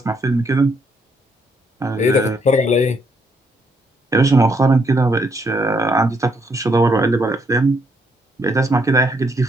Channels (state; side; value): normal; both; correlation 0.73